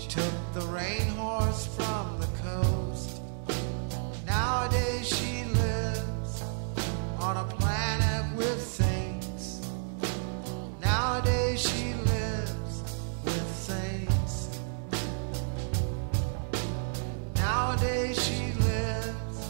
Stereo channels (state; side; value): silent; left; digital silence